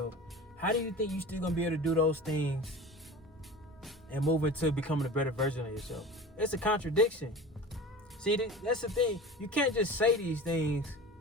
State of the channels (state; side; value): normal; both; correlation 0.35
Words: how do you think you're still gonna be able to do those things and move into becoming a better version of yourself? It's a contradiction. See, that's the thing. You can't just say these things